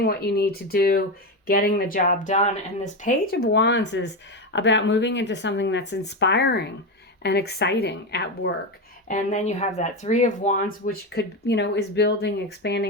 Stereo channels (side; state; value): both; normal; correlation 0.14